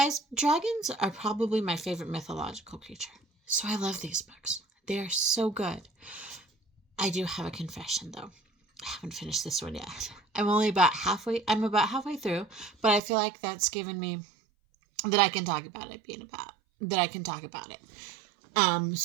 dragons are probably my favorite mythological creature. So I love these books. They are so good. I do have a confession, though. I haven't finished this one yet. I'm about halfway through, but I feel like that's given me that I can talk about it.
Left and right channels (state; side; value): drops out; left; at 13.0 s